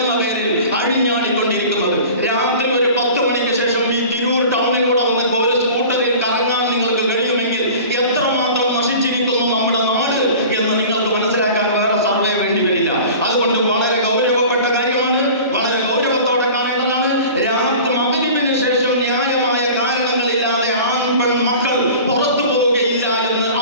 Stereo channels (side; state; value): both; inverted; correlation -0.40